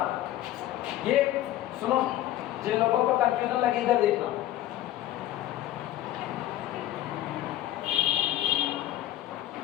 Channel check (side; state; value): right; quieter; 13.9 dB